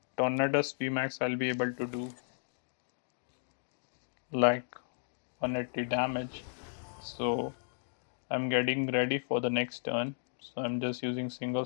Tornadus VMAX I'll be able to do like 180 damage. So I'm getting ready for the next turn. So I'm just using Single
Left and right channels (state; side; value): silent; right; digital silence